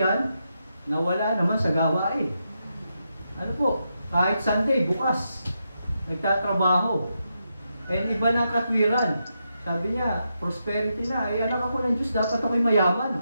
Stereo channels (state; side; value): inverted; both; correlation -0.84